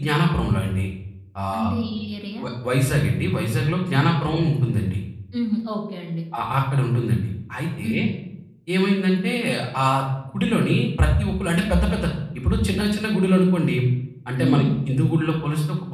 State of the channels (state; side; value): identical; both; correlation 1.00